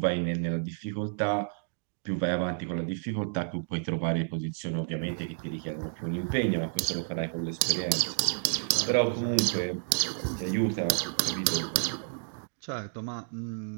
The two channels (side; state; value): left; silent; digital silence